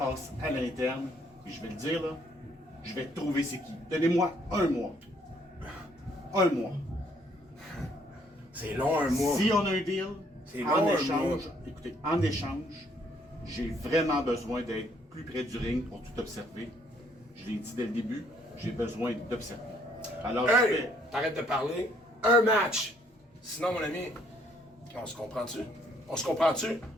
à l'interne, et je vais le dire, là, je vais trouver c'est qui. Donnez-moi un mois. Un mois. C'est long, un mois. Si on a un deal, long, en un échange, mois. écoutez, en échange, j'ai vraiment besoin d'être plus près du ring pour tout observer. Je l'ai dit dès le début, j'ai besoin d'observer. Alors, je Hey! fais... T'arrêtes de parler. Un match. Sinon, mon ami, on se comprend-tu? On se comprend-tu?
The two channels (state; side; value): normal; both; correlation 0.66